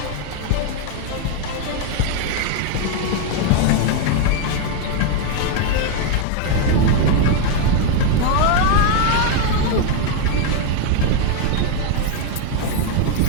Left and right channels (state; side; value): different; both; correlation 0.01